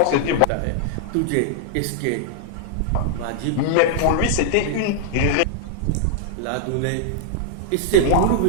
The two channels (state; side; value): different; both; correlation -0.01